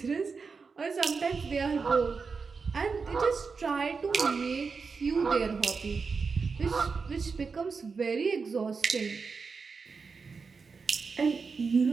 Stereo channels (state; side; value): quieter; left; 5.0 dB